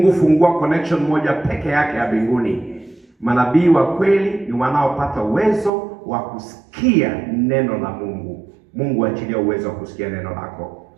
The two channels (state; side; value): drops out; left; at 5.7 s